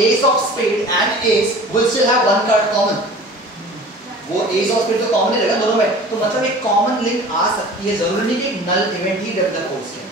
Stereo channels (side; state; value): both; normal; correlation 0.42